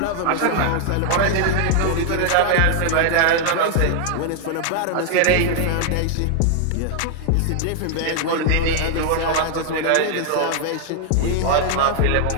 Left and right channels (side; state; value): both; different; correlation 0.00